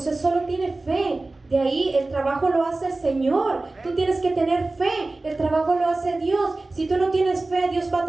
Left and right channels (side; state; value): left; quieter; 3.1 dB